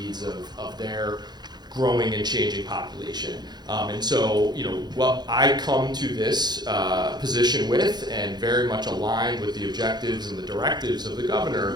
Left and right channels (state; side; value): late; left; 0.20 ms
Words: of their growing and changing population. And so, what I come to this position with, and very much aligned with the objectives and the directives of the governor,